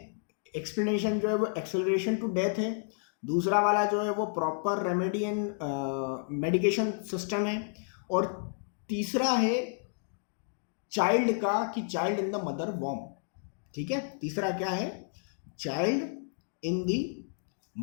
एक्सप्लेनेशन जो है वो एक्सेलरेशन टू डेथ है। दूसरा वाला जो है वो proper remedy and medication system है। और तीसरा है चाइल्ड का, कि चाइल्ड इन द मदर वॉर्म। ठीक है, तीसरा क्या है, चाइल्ड इन द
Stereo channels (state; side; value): silent; right; digital silence